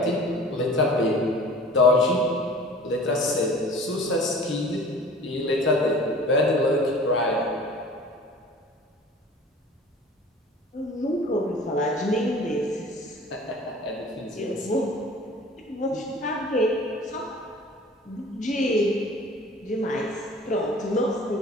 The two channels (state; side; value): normal; both; correlation 0.45